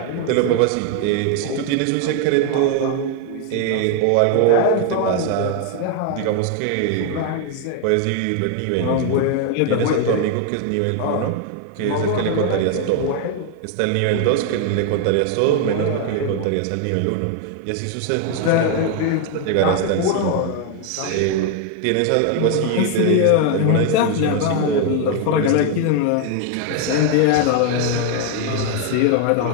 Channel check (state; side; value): different; both; correlation 0.01